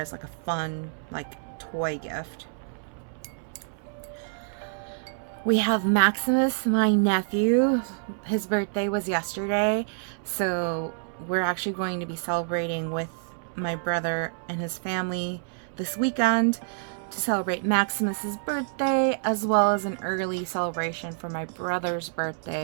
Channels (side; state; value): left; silent; 60 dB below the other